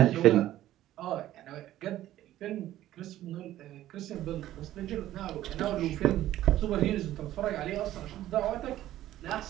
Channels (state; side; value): quieter; left; 13.7 dB